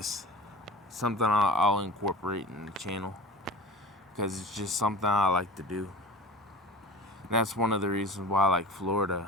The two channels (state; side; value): normal; both; correlation 0.35